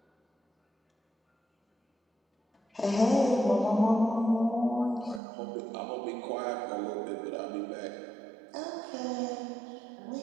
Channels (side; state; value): left; drops out; at 5.2 s